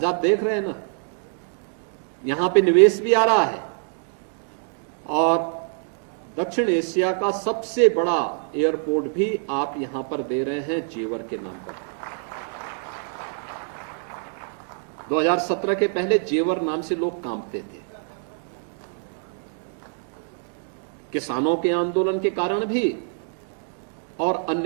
आप देख रहे हैं ना, यहां पे निवेश भी आ रहा है और दक्षिण एशिया का सबसे बड़ा एयरपोर्ट भी आप यहां पर दे रहे हैं जेवर के नाम पर। 2017 के पहले जेवर नाम से लोग कांपते थे, किसानों के आंदोलन के कारण भी और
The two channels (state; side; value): silent; left; 62 dB below the other